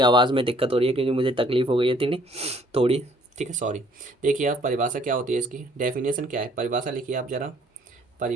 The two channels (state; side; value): normal; both; correlation 0.61